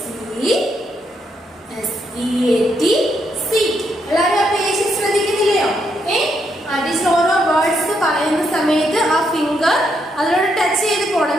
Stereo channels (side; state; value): both; normal; correlation 0.77